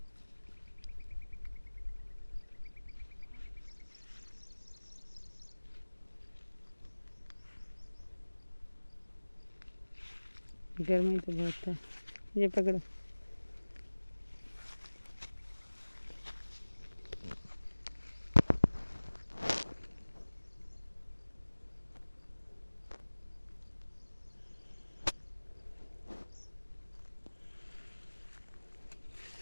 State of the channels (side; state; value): both; inverted; correlation -1.00